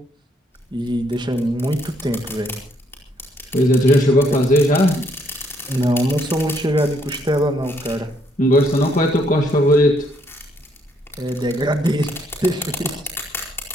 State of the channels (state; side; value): normal; both; correlation 0.70